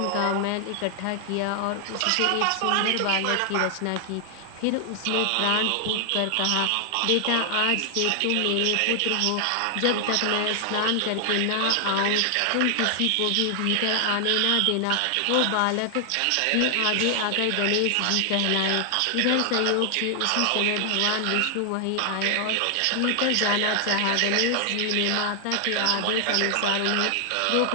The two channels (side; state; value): both; different; correlation 0.00